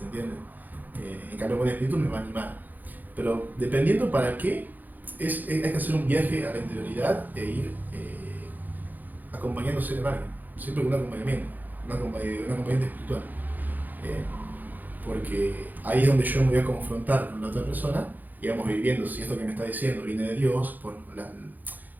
entiende? En cambio, el buen espíritu me va a animar. Pero dependiendo para qué, hay que hacer un viaje a la interioridad e ir acompañándose de alguien. Siempre con un acompañamiento, un acompañante espiritual. Porque ahí es donde yo me voy a confrontar con la otra persona y vamos viviendo si esto que me está diciendo viene de Dios, por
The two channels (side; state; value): left; late; 0.084 ms